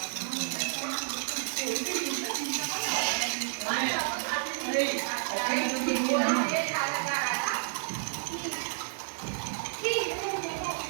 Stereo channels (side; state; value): left; silent; 57 dB below the other